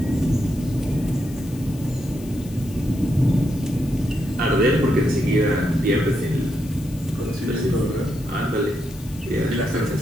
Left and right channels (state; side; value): noise; left; hiss, 20 dB below the sound